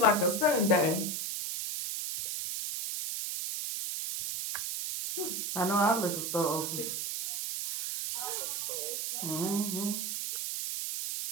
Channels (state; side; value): noise; right; hiss, 2 dB below the sound